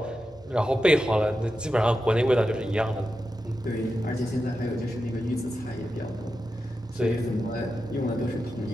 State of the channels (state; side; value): normal; both; correlation 0.90